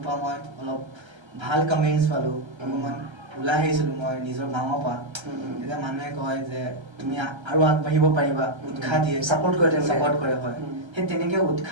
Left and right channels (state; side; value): late; left; 1.3 ms